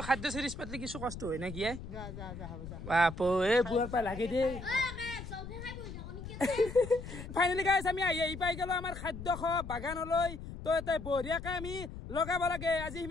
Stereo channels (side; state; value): left; noise; rumble, 10 dB below the sound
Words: খাদ্য সিরিজ পাতলি কিছু কষ্ট হয় না কি যা হ'ব যা বাপো এ বুয়াৰ পা লাগে দে ফাইনালি গাইস আমি এই পাই গেল আমাৰ খাদ্য খ বাগানলৈ তো এতে বঢ়িয়াকে আমি লগাব লাগে আজি